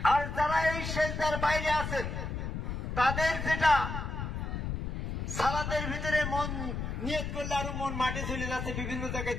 আর যারা এই সেজদার বাইরে আছেন তাদের যেটা সালাতের ভিতরে মন নিয়ত করলে আরো মন মাঠে চলে যাচ্ছে, বিভিন্ন জায়গায়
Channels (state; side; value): noise; left; rumble, 4 dB below the sound